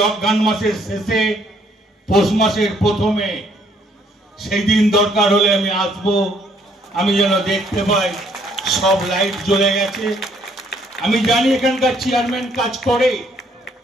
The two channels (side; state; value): both; normal; correlation 0.66